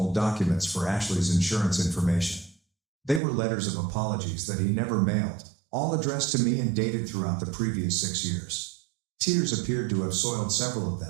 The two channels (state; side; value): drops out; left; at 3.2 s